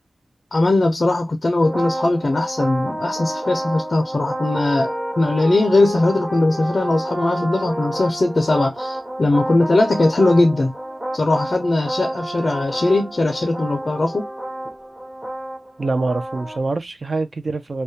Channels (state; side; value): normal; both; correlation 0.96